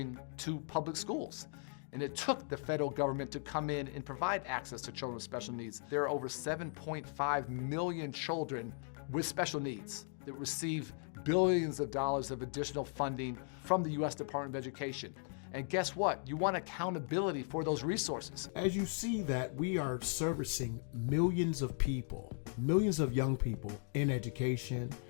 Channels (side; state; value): right; silent; 53 dB below the other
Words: to public schools. And it took the federal government to come in and provide access to children with special needs. There are over 7.5 million children with special needs that receive billions of dollars of additional funding from the U.S. Department of Education. And guess what? You want accountability for those resources. As you see that we are servicing millions of people, millions of young people in education,